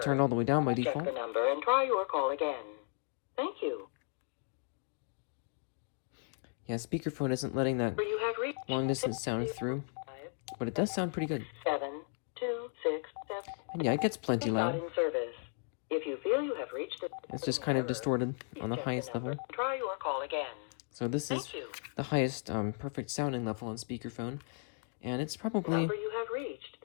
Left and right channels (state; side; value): silent; right; 54 dB below the other